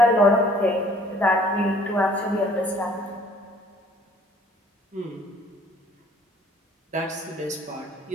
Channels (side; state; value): both; normal; correlation 0.56